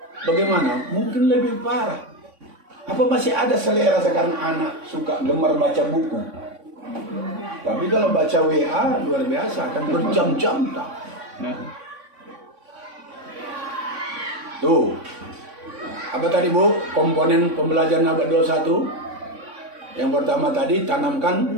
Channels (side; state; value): left; late; 3.6 ms